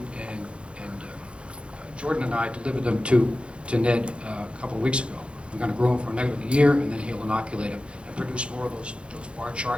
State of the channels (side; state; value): left; late; 0.058 ms